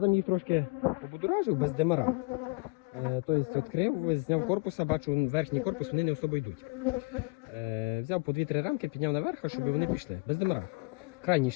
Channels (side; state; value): right; quieter; 28.3 dB